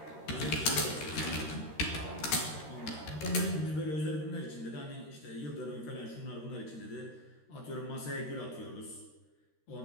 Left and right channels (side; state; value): right; late; 13 ms